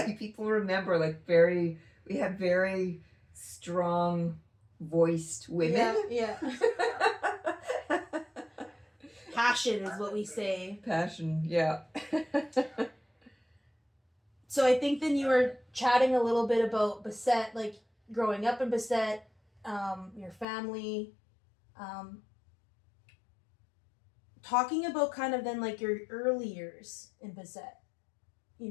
people remember, like we have very strong voiced women. Yeah. Passion is what we say. Passion, yeah. So I think then you were chatting a little bit about Bessette, like growing up in Bessette, your family, talking about kind of then like your early years in Bessette. You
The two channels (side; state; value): right; drops out; at 20.5 s